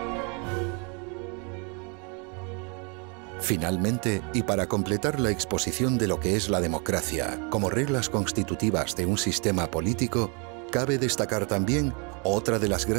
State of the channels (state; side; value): quieter; left; 34.8 dB